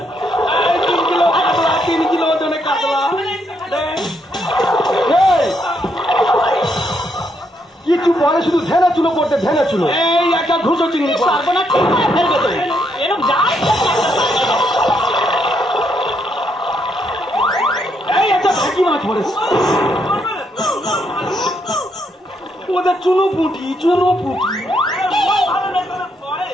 3 কিলো কাতলা, 3 কিলো ওজনে কাতলা। কিছু পরে শুধু ধ্যানা চুলো পড়তে ধ্যানা চুলো। এই একটা ঘুষো চিংড়ি সর্বনাশ ঠিক করে ফেলবে তো। এরকম যায় এই একটা ভেকি মাছ পড়েছে। ওদের চুনো পুঁটি, চুনো পুঁটি।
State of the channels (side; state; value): both; normal; correlation 0.76